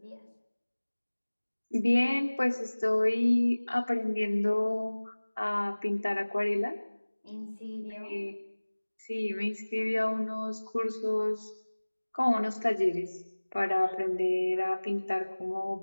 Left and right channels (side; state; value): both; inverted; correlation -1.00